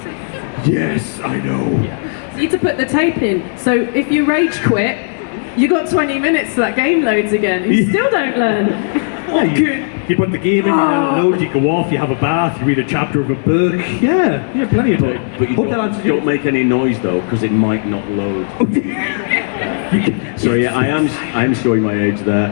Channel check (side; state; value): right; silent; digital silence